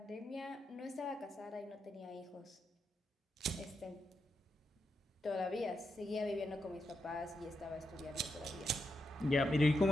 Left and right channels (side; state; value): both; normal; correlation 0.84